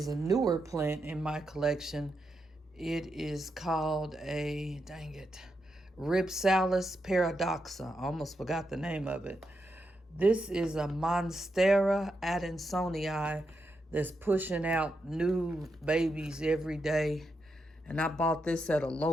a newer plant in my collection. It is called a, dang it, Rhipsalis paradoxa. I almost forgot the name of it. This is a Monstera adansonii that's pushing out new babies every day. And I bought this at a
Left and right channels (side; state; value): both; normal; correlation 0.84